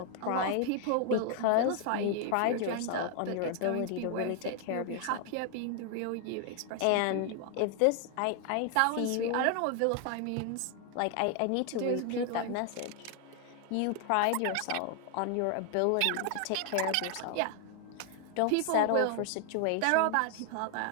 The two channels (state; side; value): different; both; correlation 0.00